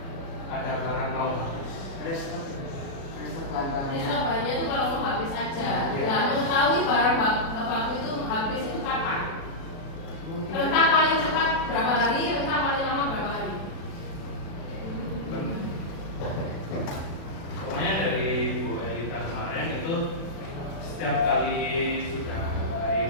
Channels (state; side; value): late; right; 36 ms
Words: ada barang mau habis. Restock bahan-bahannya. Restock bahannya itu kalau mau habis aja. Iya. Nah, mengetahui barang baku itu habis itu kapan? Rentang paling cepat berapa hari, rentang paling lama berapa hari? Pokoknya dari Bu Elita kemarin itu setiap kali sudah